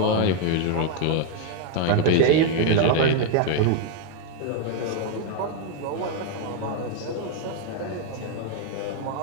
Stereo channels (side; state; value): both; different; correlation 0.00